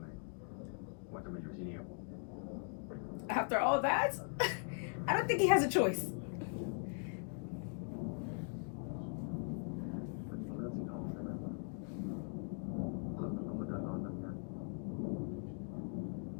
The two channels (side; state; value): right; silent; 51 dB below the other